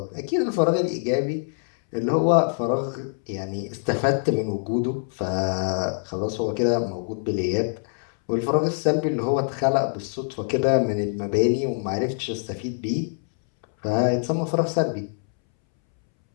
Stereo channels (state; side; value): silent; right; 62 dB below the other